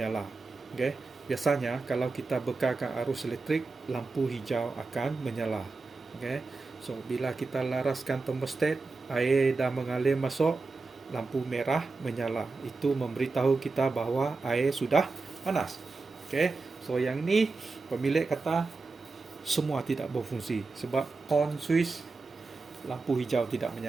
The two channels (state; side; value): quieter; left; 3.9 dB